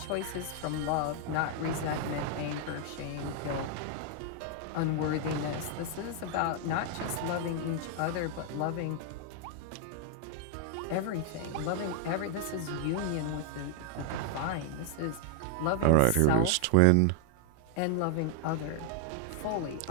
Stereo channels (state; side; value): different; both; correlation 0.00